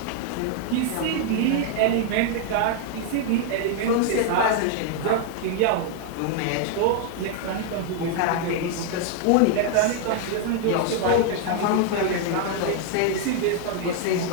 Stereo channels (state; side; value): different; both; correlation 0.00